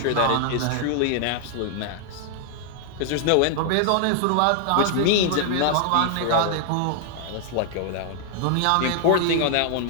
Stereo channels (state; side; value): different; both; correlation 0.00